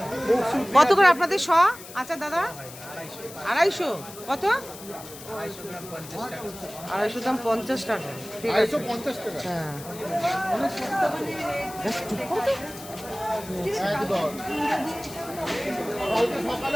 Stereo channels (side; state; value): left; noise; hiss, 15 dB below the sound